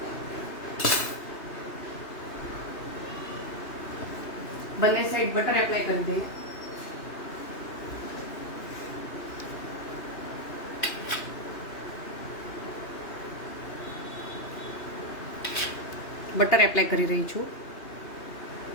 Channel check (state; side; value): late; right; 2.8 ms